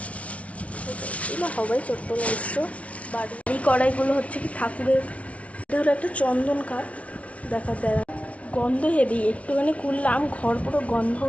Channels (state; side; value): late; right; 0.064 ms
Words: এগুলো হবাই চট্টল অবশ্য। বাড়ি এই কড়াইগুলো হচ্ছে কি ঠাকুরের। এটা হলো একটা চন্দন কাঠ, দেখা দেয় গন্ধ হেভি, একটুখানি খুললাম ঘর পুরো গন্ধ